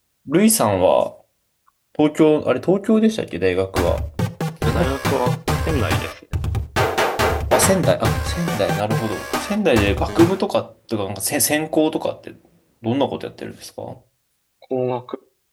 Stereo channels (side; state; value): both; identical; correlation 1.00